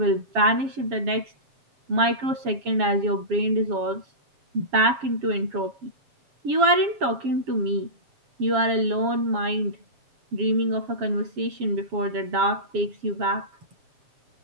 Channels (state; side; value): late; left; 7.3 ms